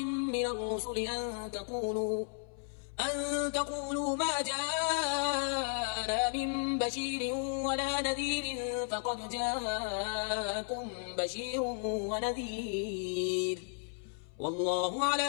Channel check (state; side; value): silent; right; 55 dB below the other